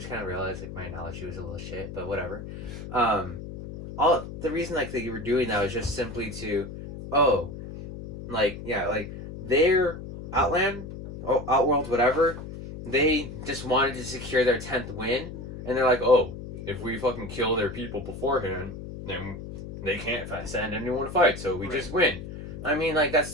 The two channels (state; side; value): noise; left; hum, 10 dB below the sound